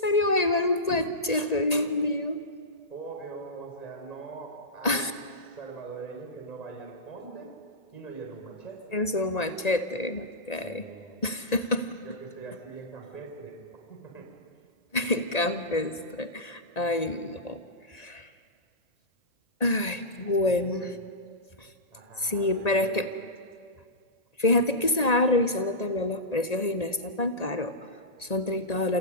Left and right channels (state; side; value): late; right; 1.8 ms